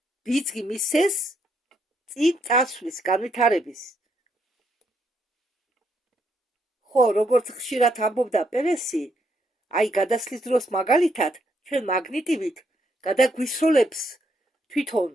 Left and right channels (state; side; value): normal; both; correlation 0.75